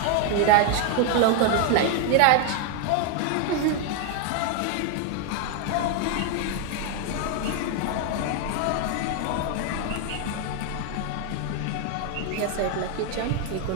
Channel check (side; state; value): both; different; correlation 0.01